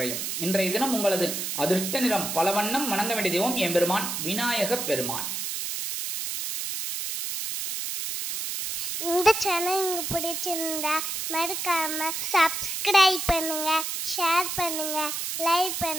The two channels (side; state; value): right; noise; hiss, 3 dB below the sound